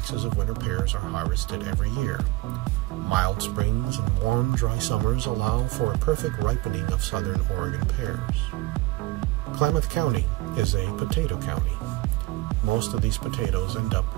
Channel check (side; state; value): left; quieter; 19.8 dB